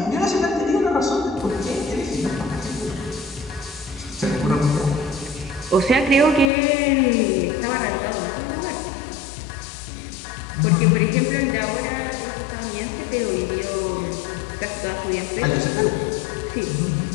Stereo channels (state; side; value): drops out; right; at 6.5 s